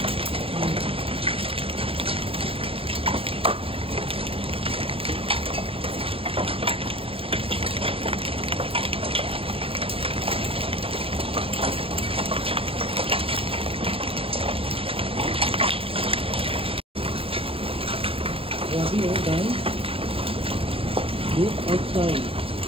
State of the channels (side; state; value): left; late; 0.27 ms